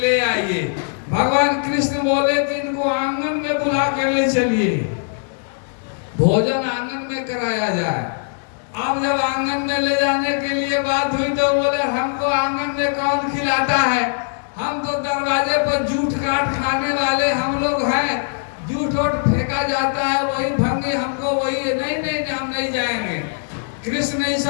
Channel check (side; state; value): right; silent; digital silence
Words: आइए। भगवान कृष्ण बोले कि इनको आंगन में बुला कर ले चलिए, भोजन आंगन में कराया जाए। अब जब आंगन में ले जाने के लिए बात हुई तो बोले हमको आंगन में कौन खिलाता है, हम तो दरवाजे पर जूठ काट खाने वाले हम लोग हैं, जूठ वोट फेंका जाता है वही भंगी हमको वही। नहीं नहीं हम नहीं जाएंगे। कृष्ण